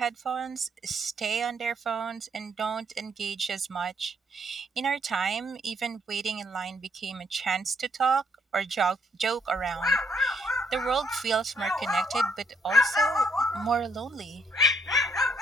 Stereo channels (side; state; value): both; normal; correlation 0.70